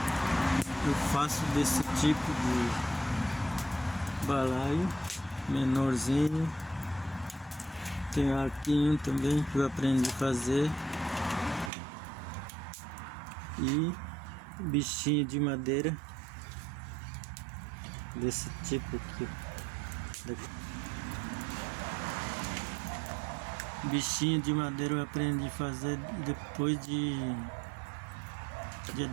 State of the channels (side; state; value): left; drops out; at 11.7 s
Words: eu faço desse tipo de balaio menorzinho. Tem arquinho também que eu aprendi a fazer, e bichinho de madeira desse tipo aqui. Bichinho de madeira eu aprendi a fazer depois de